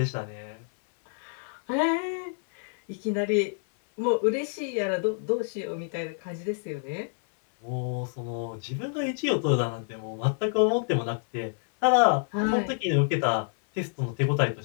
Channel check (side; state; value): right; silent; 60 dB below the other